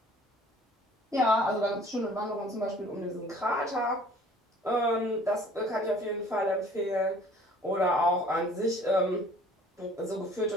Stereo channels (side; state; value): both; normal; correlation 0.52